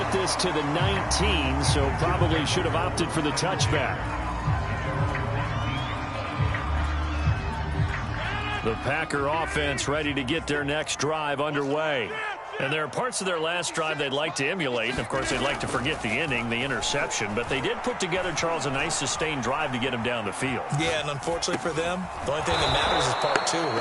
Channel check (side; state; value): both; identical; correlation 1.00